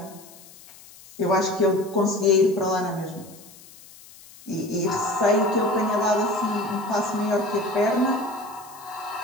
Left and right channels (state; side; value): noise; left; hiss, 21 dB below the sound